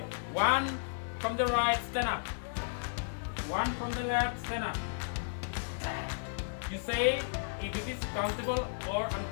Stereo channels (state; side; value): silent; right; digital silence